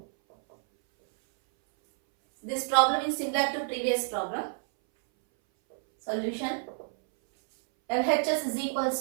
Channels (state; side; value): silent; left; 58 dB below the other